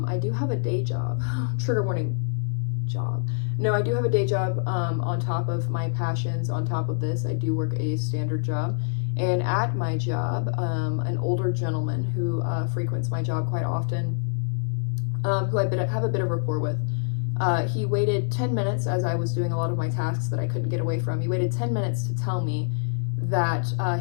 I do have a day job. Trigger warning, job. No, I do have a day job on top of my passions. On top of this, I do work a standard job. And at my job, an older gentleman who frequents my job quite often, who I have a bit of rapport with, he waited 10 minutes as I was doing a lot of my tasks that I couldn't get away from. He waited 10 minutes to tell me that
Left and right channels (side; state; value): right; silent; 61 dB below the other